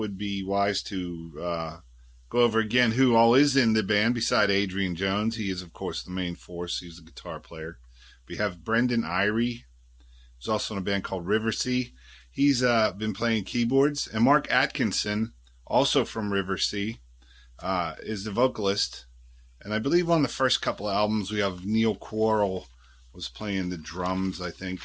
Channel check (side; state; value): both; identical; correlation 1.00